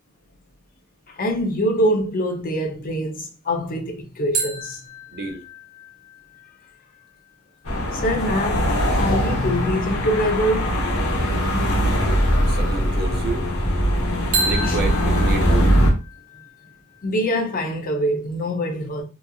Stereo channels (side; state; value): both; normal; correlation 0.57